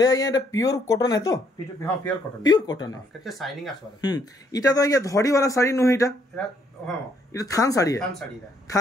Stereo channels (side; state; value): both; normal; correlation 0.69